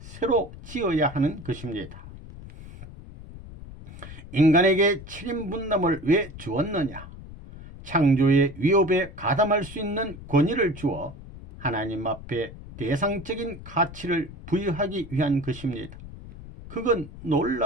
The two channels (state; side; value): noise; left; rumble, 15 dB below the sound